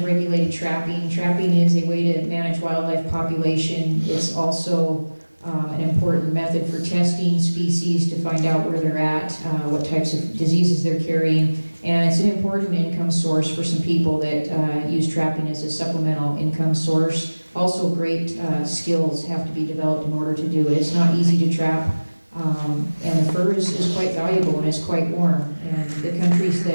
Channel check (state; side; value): inverted; both; correlation -1.00